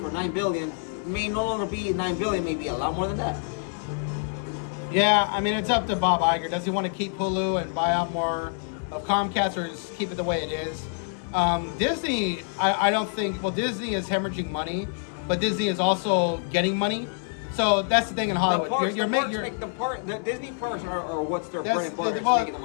$9 billion may no longer be $9 billion, maybe a lot more than that. Yeah, I mean it's up to Bob Iger. Does he want to keep Hulu and buy out more of Comcast, or just keep it the way it is? Disney, I don't think. Well, Disney is hemorrhaging money, but Disney is also getting money. So that's the thing in Hollywood. The Disney parks are what's their bread and butter. Making the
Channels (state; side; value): silent; right; 61 dB below the other